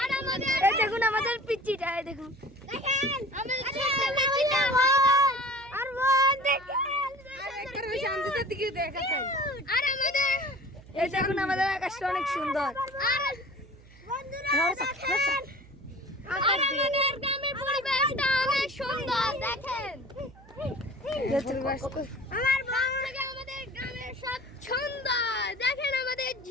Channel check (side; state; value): right; noise; hum, 23 dB below the sound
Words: আর আমাদের এই দেখুন আমাদের পিচ্চিটা, এই দেখুন দেখেন আমাদের ছোট্ট পিচ্চিটা আর বোন দেখেন। আর আমাদের এই দেখুন আমাদের আকাশটা অনেক সুন্দর। আর বন্ধুরা দেখেন, আর আমাদের গ্রামের পরিবেশটা অনেক সুন্দর দেখেন। আমার বাবা থেকে আমাদের গ্রামের সব সুন্দর দেখেন। আমাদের